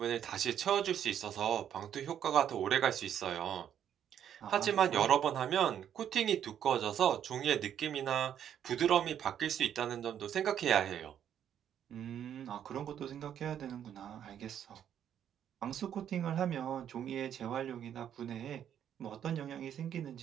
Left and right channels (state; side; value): quieter; left; 9.6 dB